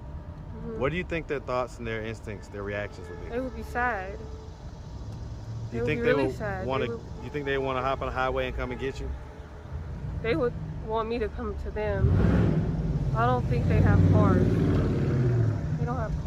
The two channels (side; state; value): both; identical; correlation 1.00